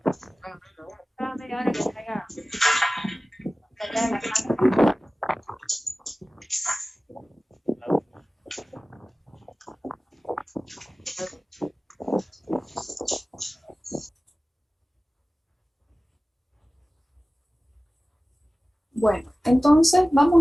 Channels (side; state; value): both; normal; correlation 0.97